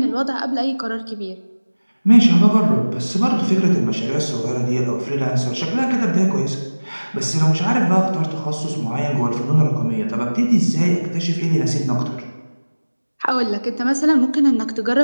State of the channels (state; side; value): inverted; both; correlation -1.00